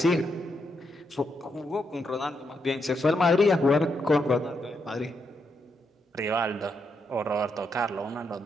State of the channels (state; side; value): normal; both; correlation 0.80